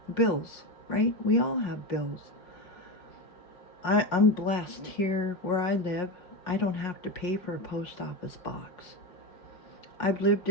bills, right? We all have bills. I'm blessed here where I live. I don't have to pay for a post office box. I've lived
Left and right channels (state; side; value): late; right; 5.5 ms